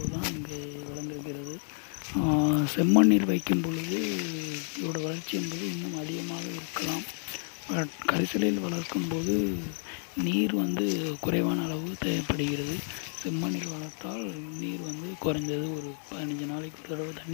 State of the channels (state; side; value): silent; right; 58 dB below the other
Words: தான் இங்கே வளர்ந்திருக்கிறது. செம்மண்ணில் வைக்கும் பொழுது இதோட வளர்ச்சி என்பது இன்னும் அதிகமாக இருக்கலாம். கரிசலில் வளர்க்கும்போது நீர் வந்து குறைவான அளவு தேவைப்படுகிறது. செம்மண்ணில் வளர்த்தால் நீர் வந்து குறைஞ்சது ஒரு 15 நாளைக்கு ஒரு தடவை